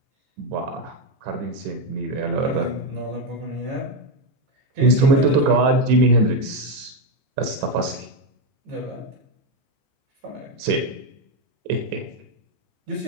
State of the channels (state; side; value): late; left; 14 ms